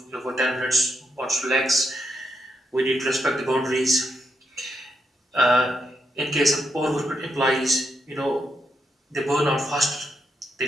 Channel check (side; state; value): both; normal; correlation 0.81